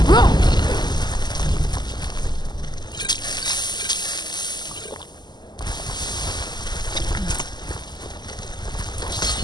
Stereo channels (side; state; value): right; late; 0.21 ms